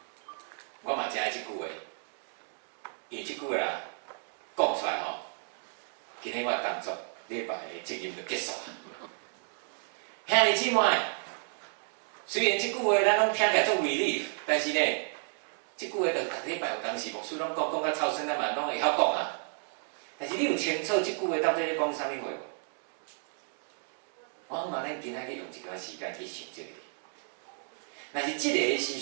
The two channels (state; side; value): silent; left; 56 dB below the other